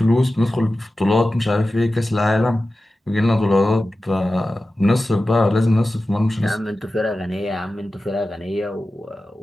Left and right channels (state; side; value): normal; both; correlation 0.94